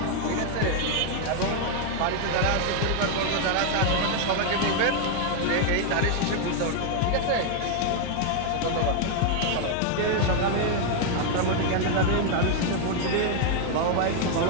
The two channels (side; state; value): both; different; correlation 0.00